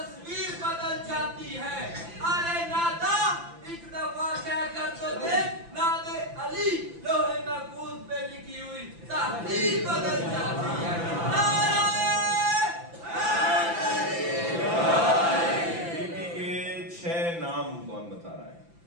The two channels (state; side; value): late; left; 5.9 ms